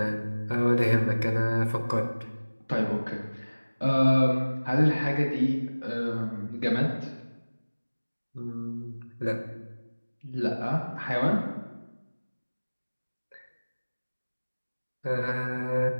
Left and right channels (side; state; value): both; inverted; correlation -1.00